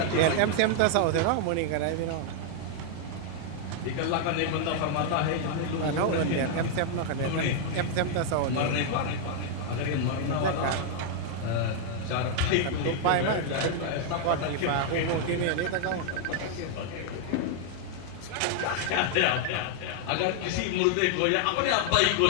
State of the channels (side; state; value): both; different; correlation 0.00